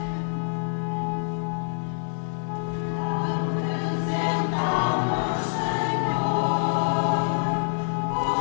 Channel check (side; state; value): right; silent; digital silence